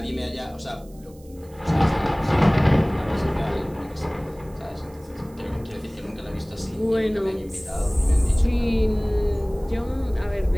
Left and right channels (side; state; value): right; noise; hiss, 27 dB below the sound